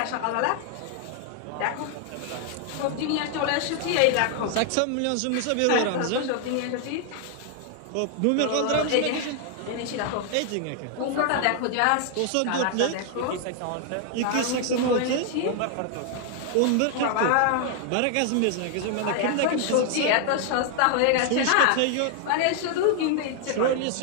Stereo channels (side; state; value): both; different; correlation 0.00